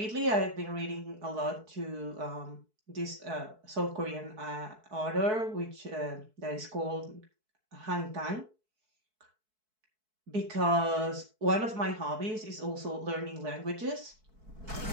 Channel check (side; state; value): left; late; 4.6 ms